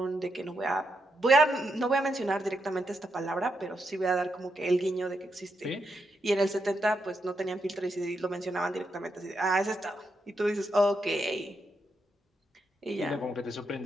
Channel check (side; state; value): both; normal; correlation 0.82